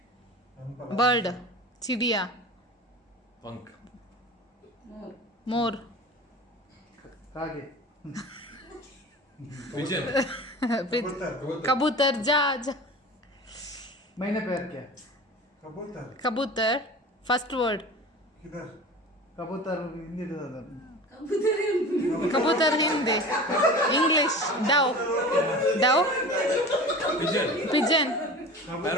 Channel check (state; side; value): normal; both; correlation 0.36